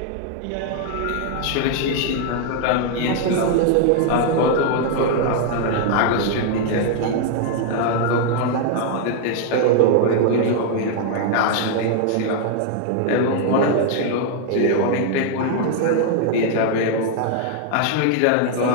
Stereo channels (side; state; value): both; different; correlation 0.00